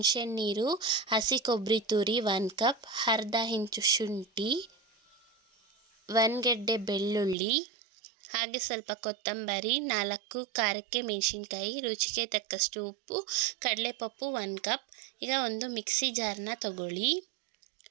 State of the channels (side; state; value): left; drops out; at 7.4 s